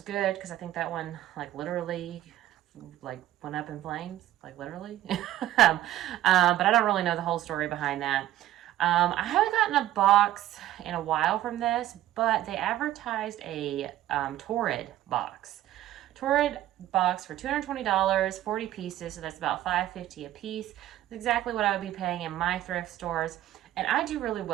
good because I think that one like literally like went up in flames, like literally. But I don't really know the whole story behind that. I haven't gotten a box in a while from this, but they advertised a Torrid box. Torrid box for $220, 40 pieces, so that's about $5.50 a piece. That's exactly what I would be paying in my thrift stores. And I do really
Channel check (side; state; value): left; quieter; 13.7 dB